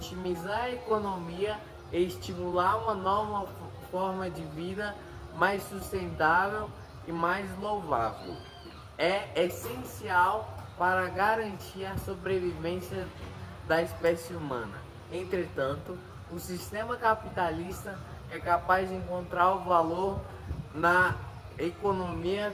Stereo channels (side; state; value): both; identical; correlation 1.00